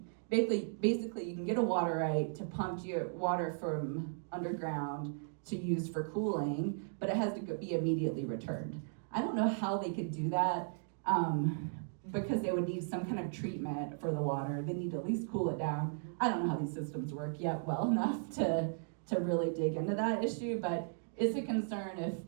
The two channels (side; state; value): left; silent; digital silence